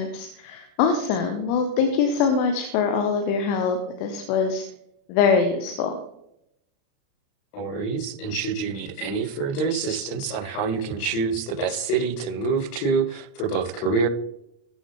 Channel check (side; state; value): right; late; 35 ms